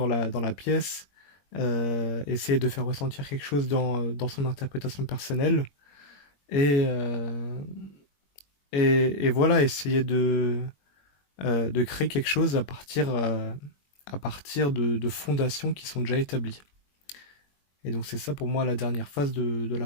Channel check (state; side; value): late; right; 21 ms